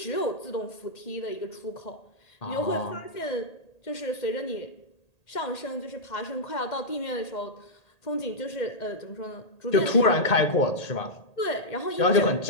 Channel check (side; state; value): right; late; 1.8 ms